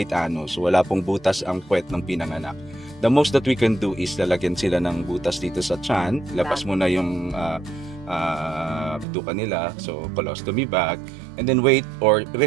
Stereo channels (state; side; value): drops out; left; at 9.1 s